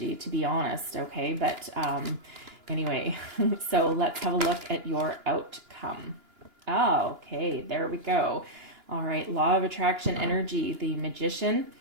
to be honest, okay, but anyway, so let's have a look at your outcome. Oh, okay, there we go. All right, law of attraction energy, the Magician.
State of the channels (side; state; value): left; late; 2.9 ms